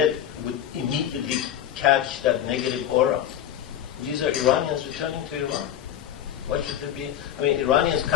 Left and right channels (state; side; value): quieter; right; 10.6 dB